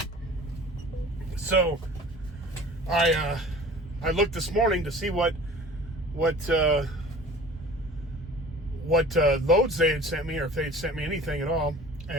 so I looked this morning to see what loads they had sent me, or if they had sent me anything at all.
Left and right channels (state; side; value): normal; both; correlation 0.44